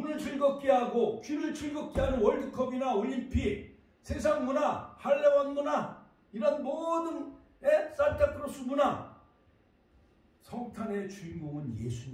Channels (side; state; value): both; identical; correlation 1.00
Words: 즐겁게 하고 귀를 즐겁게 하는 월드컵이나 올림픽, 세상 문화, 할레원 문화, 이런 모든 산타크로스 문화, 성탄의 주인공은